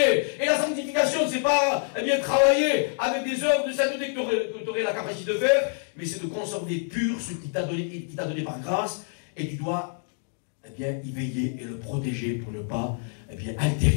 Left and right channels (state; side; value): silent; right; 61 dB below the other